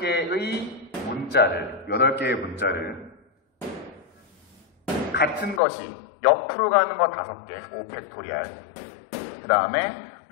문자를 같은 것이 옆으로 가는 거 5개, 5팩토리알. 그 다음에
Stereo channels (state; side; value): drops out; right; at 5.6 s